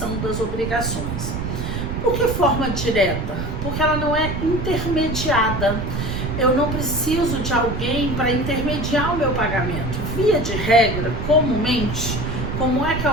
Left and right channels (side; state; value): right; noise; rumble, 4 dB below the sound